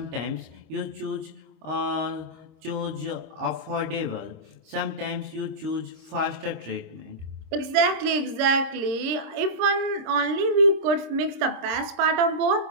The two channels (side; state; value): left; late; 26 ms